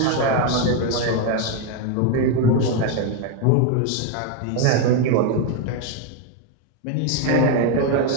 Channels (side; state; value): both; different; correlation 0.02